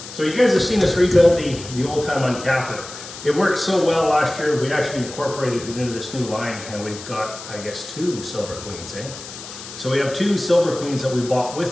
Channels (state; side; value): noise; left; hiss, 13 dB below the sound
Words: So you guys have seen us rebuild the old time uncapper. It worked so well last year, we actually incorporated it into this new line, and we've got, I guess, 2 Silver Queens, eh? So we have 2 Silver Queens that we bought